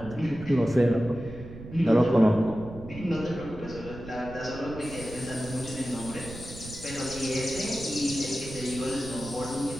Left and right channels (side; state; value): right; noise; rumble, 13 dB below the sound